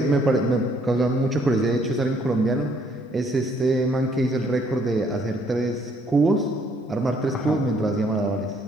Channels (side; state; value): both; normal; correlation 0.65